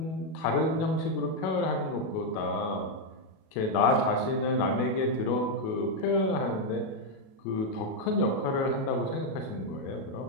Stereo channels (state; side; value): late; right; 37 ms